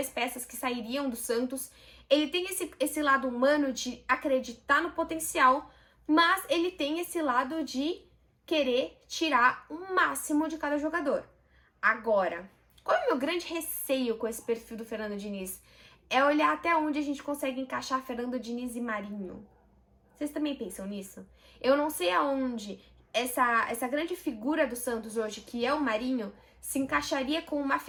peças que sairiam do Santos. Ele tem esse lado humano de acreditar no potencial, mas ele tem esse lado de querer tirar o máximo de cada jogador. Agora, qual é o meu grande receio com esse perfil do Fernando Diniz? É olhar até onde a gente consegue encaixar Fernando Diniz e Marinho. Vocês também pensam nisso? Eu não sei aonde essa grande figura do Santos hoje, que é o Marinho, se encaixaria com uma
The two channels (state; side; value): identical; both; correlation 1.00